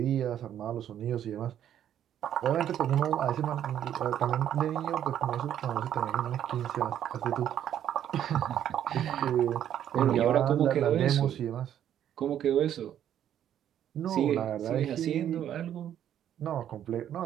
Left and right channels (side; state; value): left; quieter; 10.4 dB